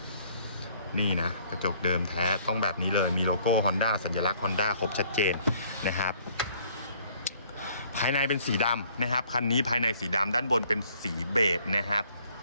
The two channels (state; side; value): inverted; both; correlation -0.60